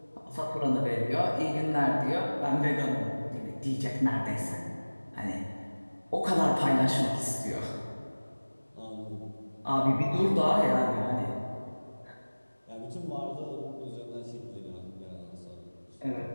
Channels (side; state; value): both; inverted; correlation -1.00